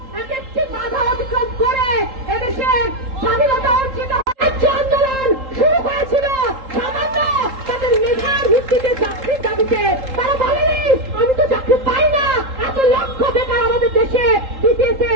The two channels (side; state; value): left; late; 3.8 ms